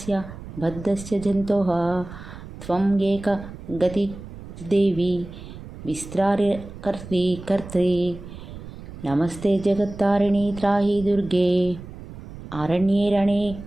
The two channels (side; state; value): right; noise; rumble, 14 dB below the sound